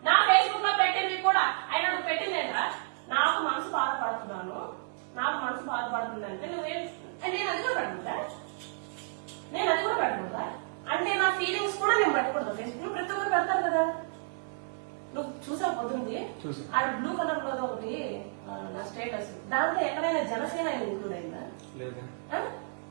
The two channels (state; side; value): silent; left; digital silence